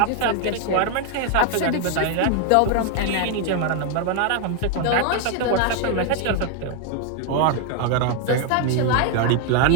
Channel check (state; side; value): different; both; correlation 0.00